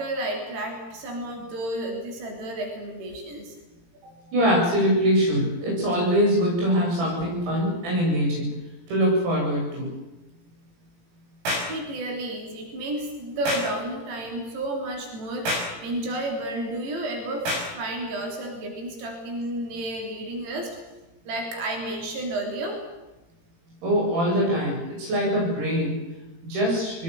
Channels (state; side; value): late; left; 18 ms